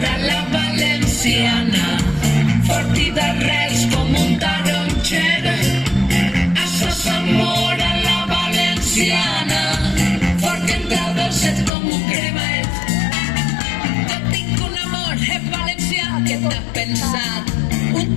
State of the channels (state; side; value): drops out; right; at 11.7 s